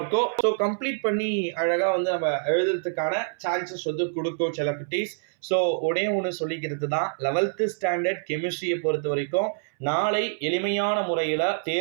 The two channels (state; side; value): silent; left; 61 dB below the other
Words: ஸோ கம்ப்ளீட் பண்ணி அழகா வந்து நம்ம எழுதுறதுக்கான சான்சஸ் வந்து கொடுக்கும் சில குட்டீஸ். ஸோ ஒரே ஒன்று சொல்லிக்கிறது தான், 11th ஸ்டாண்டர்ட் கெமிஸ்ட்ரியை பொறுத்த வரைக்கும் நாளை எளிமையான முறையில்